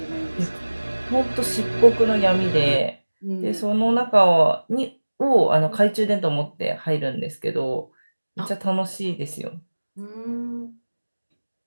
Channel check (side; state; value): both; inverted; correlation -1.00